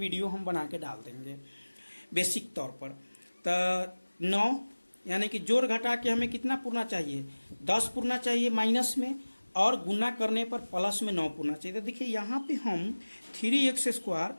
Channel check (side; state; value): both; inverted; correlation -1.00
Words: हम बना के डाल देंगे बेसिक तौर पर। तो 9 यानी कि जोड़ घटा के हमें कितना पूरना चाहिए 10 पूरना चाहिए माइनस में, और गुना करने पर प्लस में 9 पूरना चाहिए। तो देखिए यहाँ पे हम 3x